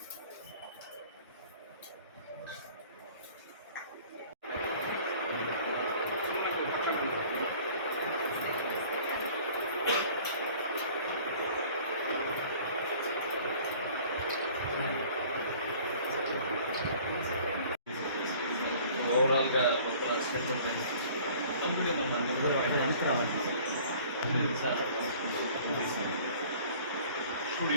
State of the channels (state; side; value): inverted; both; correlation -0.50